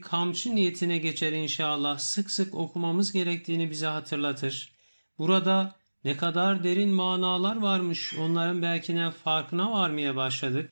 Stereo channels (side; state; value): both; inverted; correlation -1.00